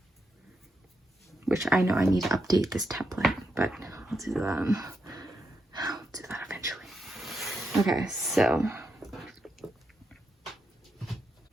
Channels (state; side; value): normal; both; correlation 0.83